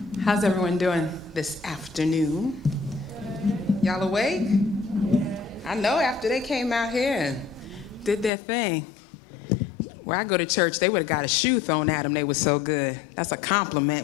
How's everyone doing this afternoon? Y'all awake? I know after they came out here and did their thing. Where I go to church, they would have got a shoe thrown at them. They were so good. That's a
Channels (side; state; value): right; drops out; at 8.3 s